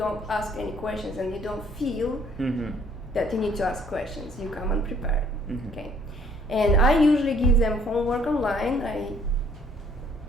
ask any questions and you don't feel that you need to ask questions, you come unprepared. Okay. And I usually give them homework online. I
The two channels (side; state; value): both; normal; correlation 0.61